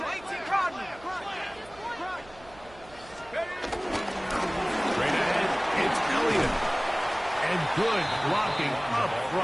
Good blocking up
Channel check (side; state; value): right; noise; hum, 22 dB below the sound